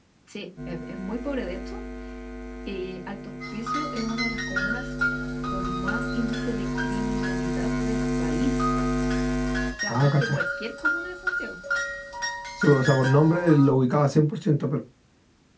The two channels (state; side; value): identical; both; correlation 1.00